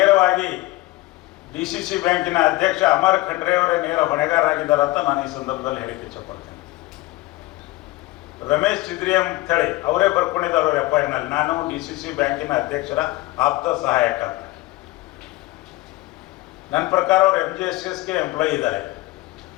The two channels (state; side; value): quieter; right; 19.6 dB